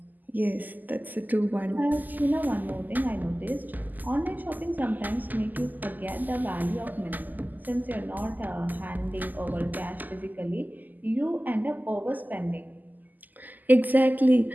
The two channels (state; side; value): late; left; 0.084 ms